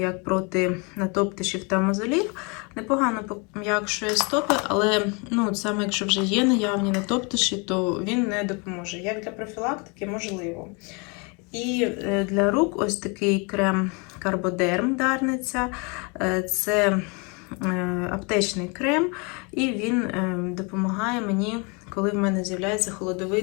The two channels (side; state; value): right; quieter; 31.6 dB